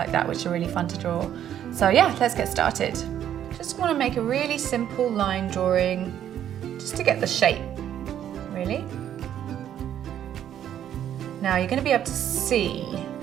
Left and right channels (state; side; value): quieter; left; 10.4 dB